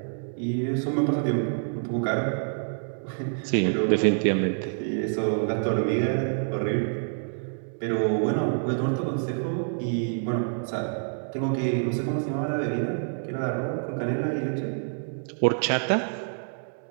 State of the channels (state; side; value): silent; left; digital silence